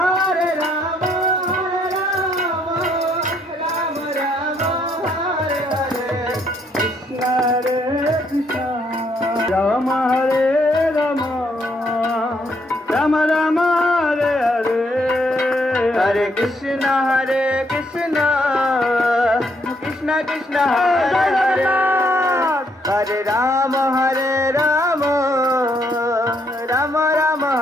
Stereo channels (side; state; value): both; normal; correlation 0.72